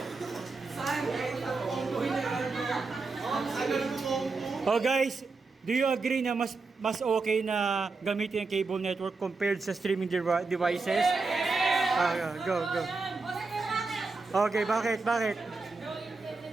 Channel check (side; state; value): left; quieter; 4.0 dB